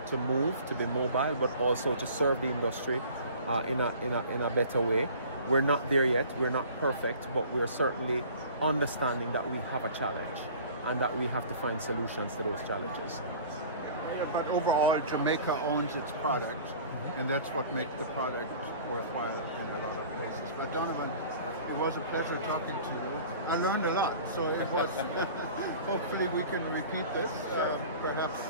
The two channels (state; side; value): inverted; both; correlation -0.45